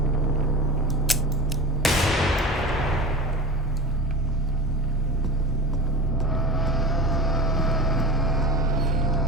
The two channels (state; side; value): normal; both; correlation 0.31